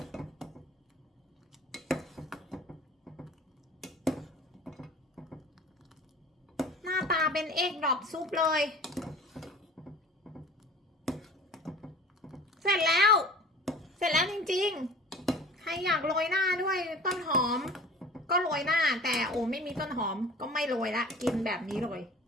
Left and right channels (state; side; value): normal; both; correlation 0.42